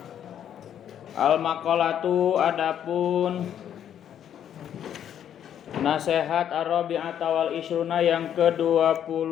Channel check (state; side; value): quieter; right; 9.7 dB